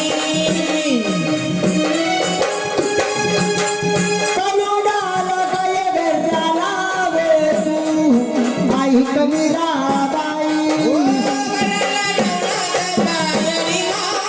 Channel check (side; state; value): both; identical; correlation 1.00